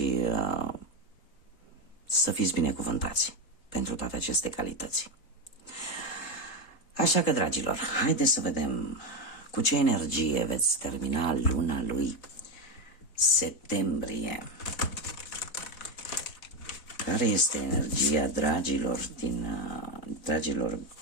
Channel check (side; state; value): right; late; 3.8 ms